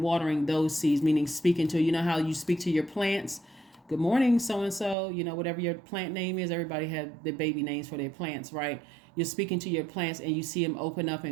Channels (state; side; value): drops out; left; at 5.0 s